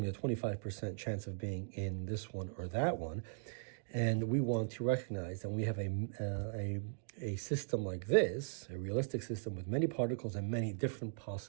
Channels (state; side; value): silent; left; digital silence